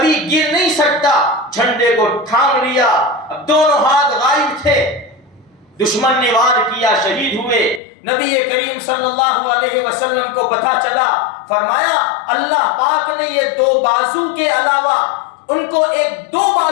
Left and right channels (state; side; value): drops out; right; at 7.8 s